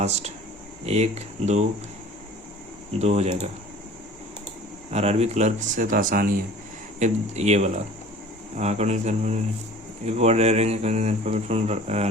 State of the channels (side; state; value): both; normal; correlation 0.45